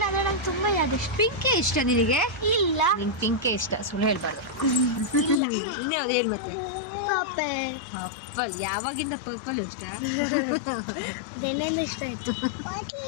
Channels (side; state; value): right; drops out; at 5.4 s